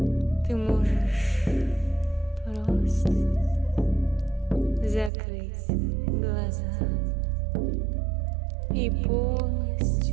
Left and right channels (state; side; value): drops out; left; at 5.1 s